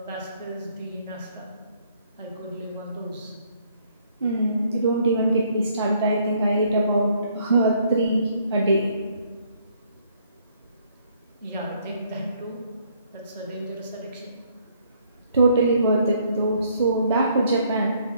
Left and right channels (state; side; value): inverted; both; correlation -0.66